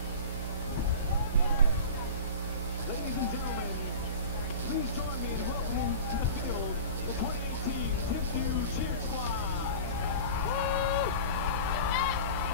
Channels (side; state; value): both; inverted; correlation -0.34